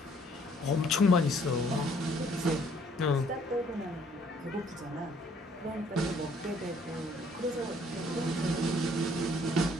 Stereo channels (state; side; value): normal; both; correlation 0.62